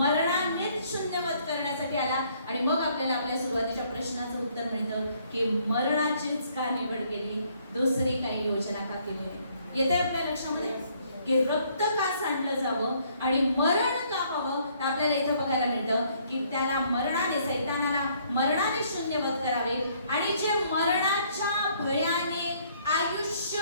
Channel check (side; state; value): both; inverted; correlation -0.65